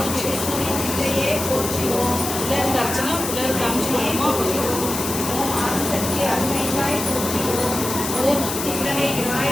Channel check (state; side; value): noise; left; hiss, 5 dB below the sound